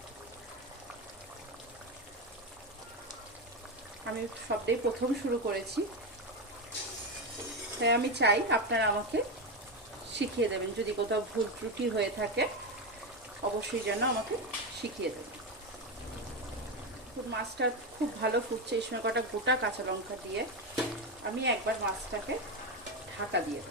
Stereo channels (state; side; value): normal; both; correlation 0.13